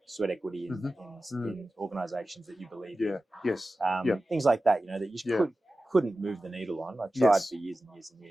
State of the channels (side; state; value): both; normal; correlation 0.95